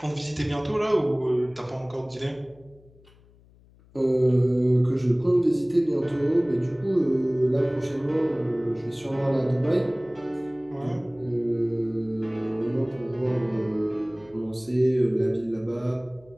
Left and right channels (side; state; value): left; noise; hum, 28 dB below the sound